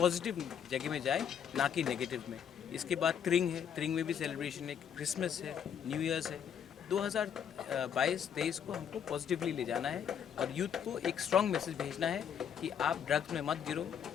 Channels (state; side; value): quieter; right; 8.3 dB